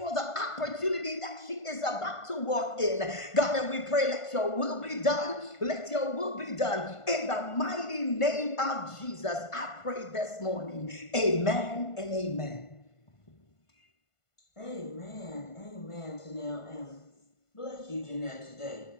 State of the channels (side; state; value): right; late; 1.5 ms